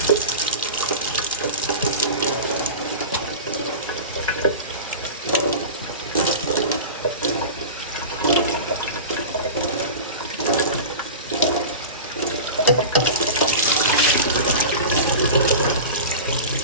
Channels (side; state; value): both; inverted; correlation -0.31